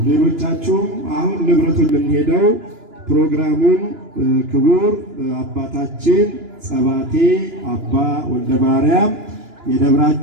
ሌሎቻችሁም አሁን ንብረቱን ልንሄደው ፕሮግራሙን ክቡር አባታችን ጸባቴ አባ ወልደ ማርያም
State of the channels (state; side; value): late; left; 2.9 ms